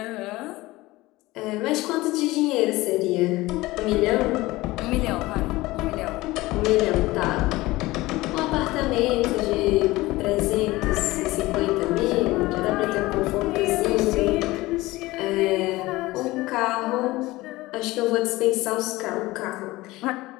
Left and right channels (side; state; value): right; quieter; 19.4 dB